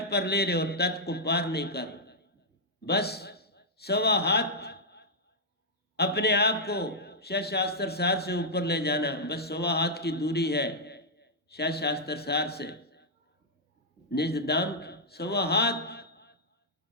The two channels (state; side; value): normal; both; correlation -0.09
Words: पर ले रहे हो, तट को पार नहीं कर। बस सवा हाथ अपने आप को शास्त्र सार से ऊपर ले जाना। बस सवा हाथ की दूरी है शास्त्र सार से निज धाम, सवा हाथ